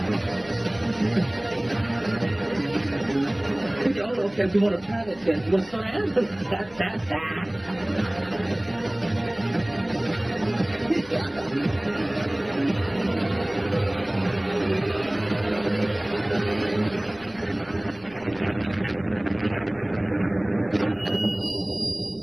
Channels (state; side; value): noise; left; rumble, 24 dB below the sound